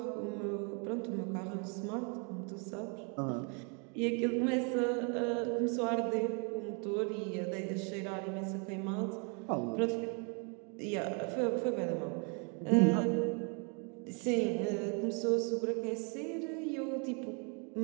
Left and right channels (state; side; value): quieter; left; 36.1 dB